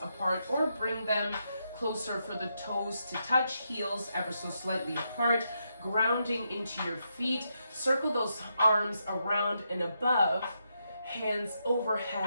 apart or bring them closer for the toes to touch, heels ever so slightly apart, grounding into your feet. Circle those arms around and above, hands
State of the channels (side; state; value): both; inverted; correlation -0.82